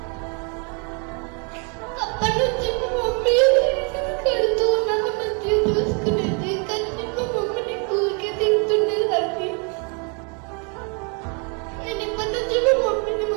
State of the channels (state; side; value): quieter; left; 36.3 dB